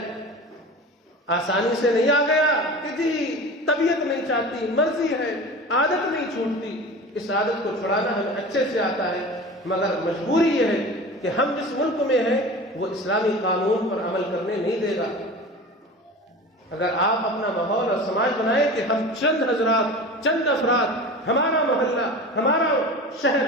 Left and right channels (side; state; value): both; normal; correlation 0.34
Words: آسانی سے نہیں آ گیا کہ جی طبیعت نہیں چاہتی، مرضی ہے، عادت نہیں چھوٹتی۔ اس عادت کو چھڑانا ہمیں اچھے سے آتا ہے، مگر مجبوری یہ ہے کہ ہم جس ملک میں ہیں وہ اسلامی قانون پر عمل کرنے نہیں دے گا۔ اگر آپ اپنا ماحول اور سماج بنائیں کہ ہم چند حضرات، چند افراد، ہمارا محلہ، ہمارا شہر